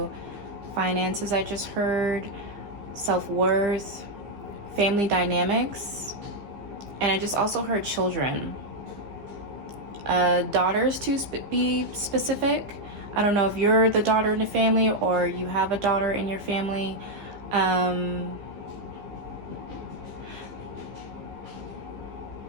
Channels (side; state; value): left; late; 15 ms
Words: finances, I just heard, self-worth, family dynamics. And I just also heard children, daughters to be specific. I don't know if you're the daughter in the family or you have a daughter in your family. I'm